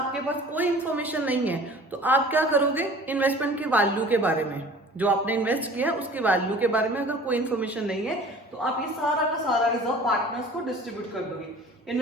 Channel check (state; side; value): normal; both; correlation 0.45